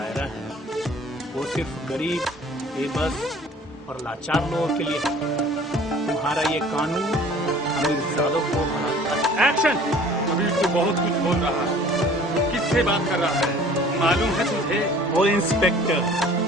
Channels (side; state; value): both; normal; correlation 0.50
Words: है, वो सिर्फ गरीब, बेबस और लाचार लोगों के लिए है। तुम्हारा ये कानून अमीरजादों को बनाता है। एक्शन। कबीर तो बहुत कुछ बोल रहा है, किससे बात कर रहा है? मालूम है तुझे? ओ इंस्पेक्टर,